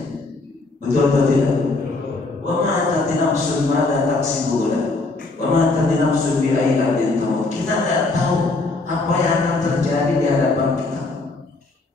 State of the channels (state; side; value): quieter; right; 3.4 dB